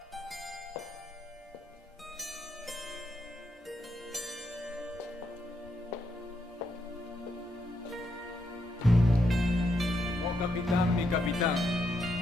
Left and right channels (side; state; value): both; normal; correlation 0.80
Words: Oh, capitán, mi capitán.